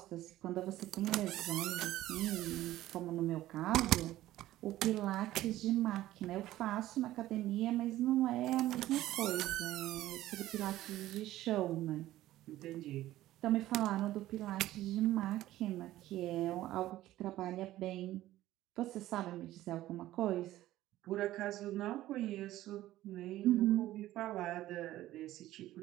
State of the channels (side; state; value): left; quieter; 14.9 dB